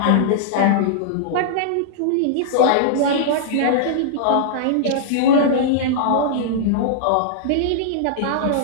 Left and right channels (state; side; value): different; both; correlation -0.02